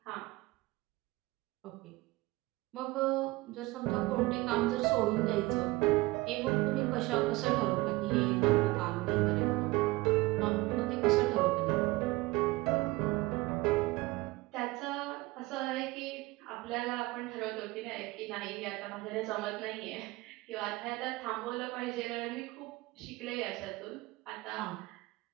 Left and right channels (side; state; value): left; quieter; 21.1 dB